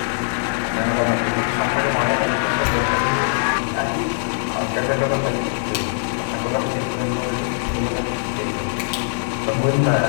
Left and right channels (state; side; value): silent; right; digital silence